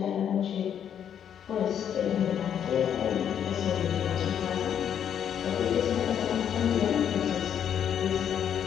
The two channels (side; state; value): right; quieter; 9.0 dB